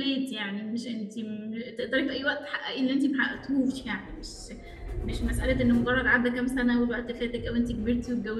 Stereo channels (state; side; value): identical; both; correlation 1.00